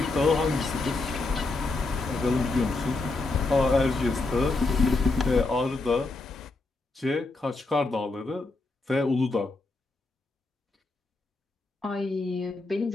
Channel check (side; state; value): right; quieter; 3.3 dB